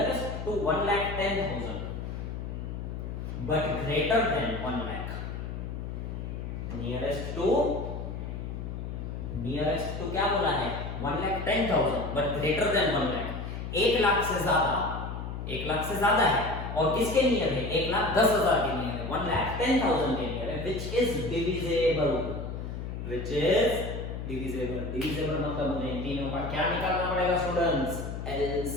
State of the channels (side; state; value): left; noise; hum, 6 dB below the sound